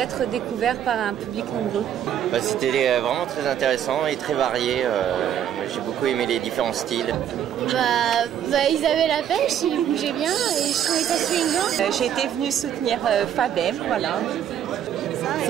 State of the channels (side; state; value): left; quieter; 9.8 dB